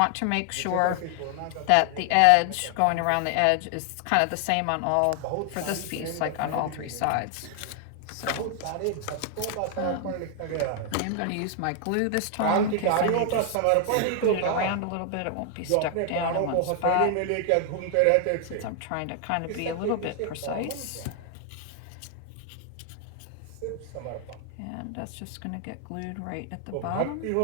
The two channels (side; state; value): both; different; correlation 0.00